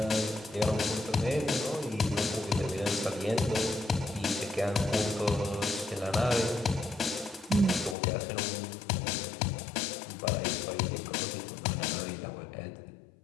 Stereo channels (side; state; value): right; drops out; at 8.0 s